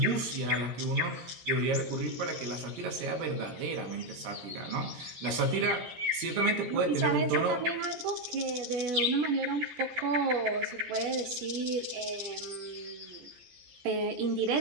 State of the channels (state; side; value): late; left; 17 ms